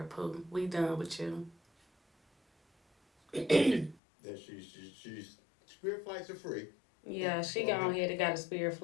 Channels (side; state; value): right; drops out; at 4.0 s